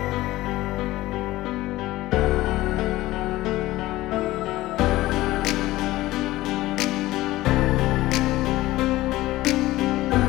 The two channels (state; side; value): quieter; right; 17.2 dB